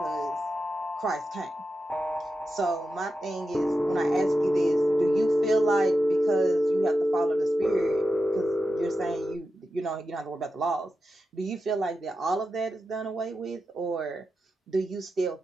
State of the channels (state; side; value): normal; both; correlation 0.90